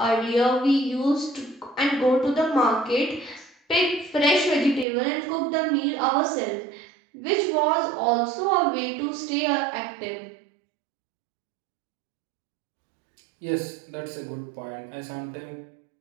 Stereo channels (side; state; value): left; drops out; at 4.9 s